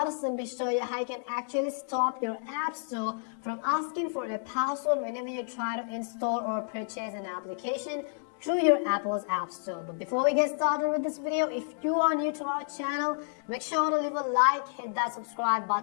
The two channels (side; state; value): right; silent; digital silence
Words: to simply show you how you can actually stop your App Store from asking for a password whenever you try to install or purchase an application through your Apple's App Store. But before we get started with this video, if you are new to our channel, make sure to leave a like, hit that subscribe